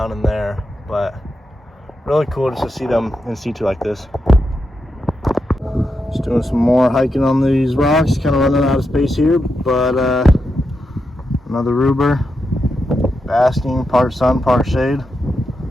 in there. But really cool just to see them in situ like this. Just doing some more hiking on these rocks, kind of running out of space here, but another ruber, basking, part sun, part shade.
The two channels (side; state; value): both; normal; correlation 0.86